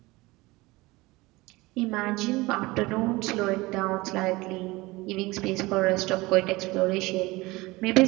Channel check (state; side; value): quieter; left; 21.5 dB